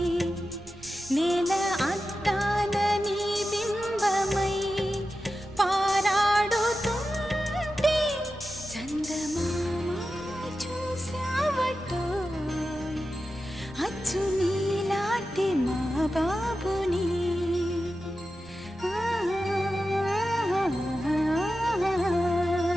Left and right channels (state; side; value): noise; right; rumble, 22 dB below the sound